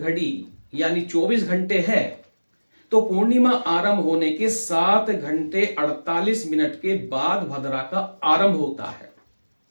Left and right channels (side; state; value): both; inverted; correlation -1.00